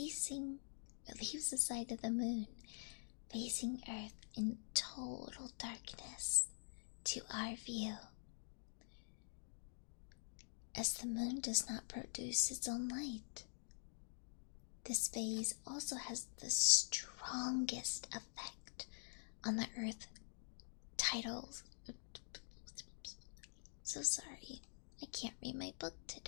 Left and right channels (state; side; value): silent; right; digital silence